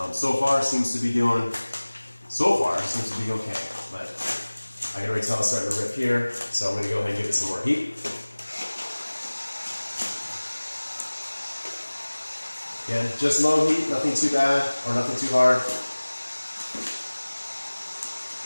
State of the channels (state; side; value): inverted; both; correlation -1.00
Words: So far seems to be okay, but I can already tell it's starting to rip here, so I'm going to go ahead and give it some more heat. Again, just low heat, nothing too bad or nothing too hard.